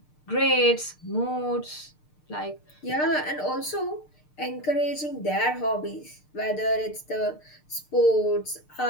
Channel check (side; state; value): right; late; 6.6 ms